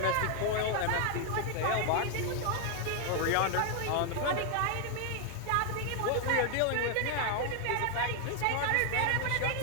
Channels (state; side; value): different; both; correlation 0.00